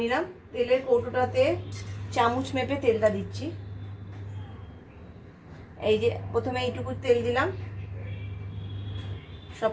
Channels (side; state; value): both; identical; correlation 1.00